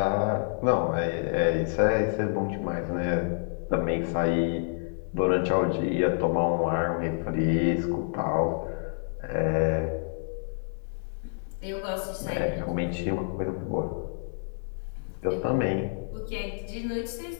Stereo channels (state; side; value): silent; right; digital silence